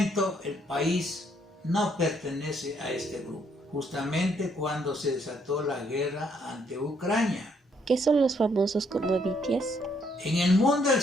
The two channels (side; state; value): both; normal; correlation 0.70